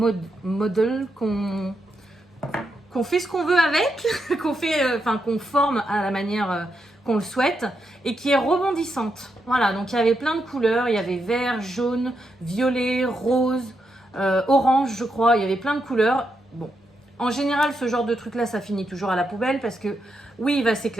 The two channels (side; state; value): both; normal; correlation 0.83